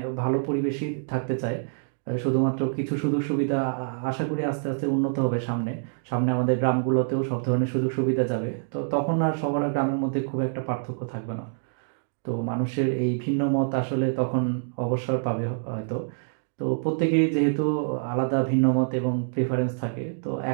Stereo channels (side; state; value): left; silent; digital silence